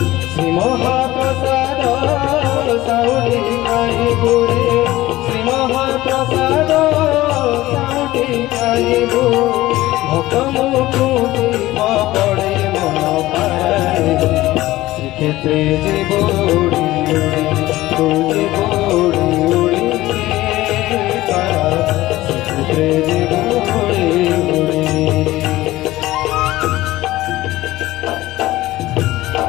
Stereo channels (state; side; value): quieter; right; 17.1 dB